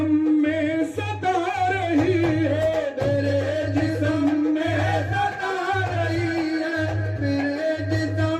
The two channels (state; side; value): identical; both; correlation 1.00